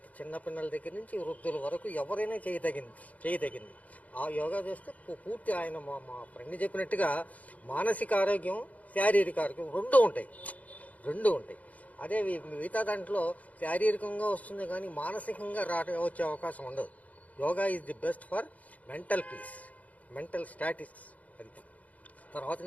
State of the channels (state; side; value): late; right; 0.072 ms